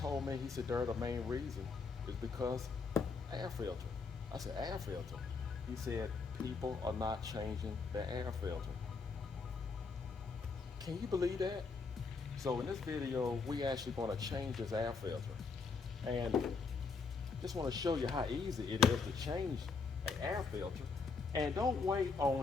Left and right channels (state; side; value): quieter; right; 4.7 dB